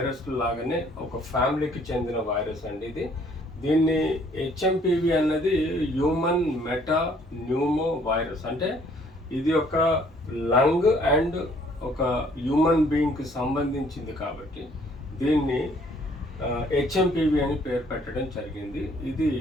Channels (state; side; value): normal; both; correlation 0.61